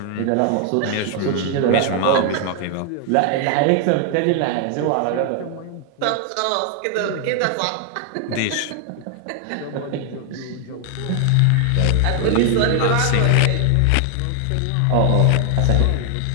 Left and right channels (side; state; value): both; different; correlation 0.00